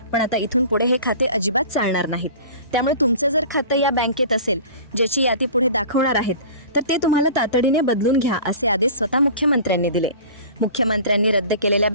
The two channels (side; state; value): both; inverted; correlation -0.40